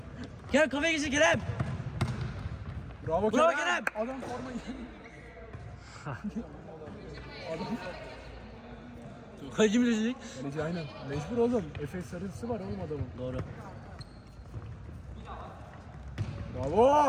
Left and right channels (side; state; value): both; identical; correlation 1.00